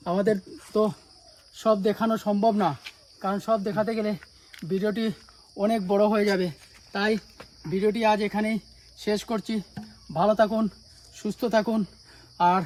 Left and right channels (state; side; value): identical; both; correlation 1.00